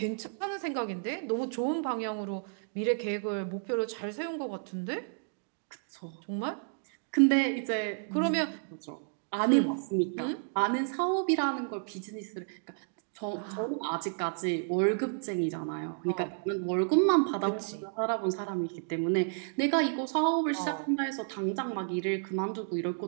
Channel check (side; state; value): left; silent; digital silence